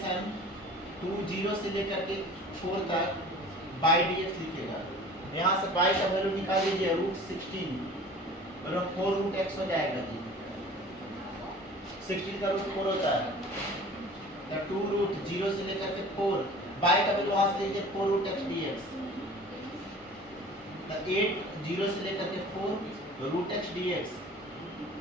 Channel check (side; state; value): both; normal; correlation 0.44